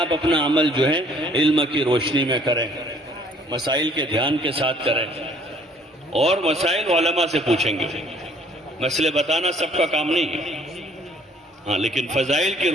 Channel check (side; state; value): both; normal; correlation 0.58